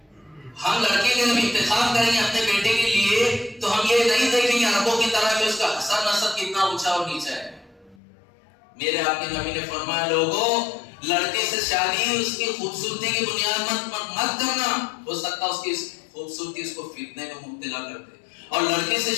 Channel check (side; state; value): right; drops out; at 8.0 s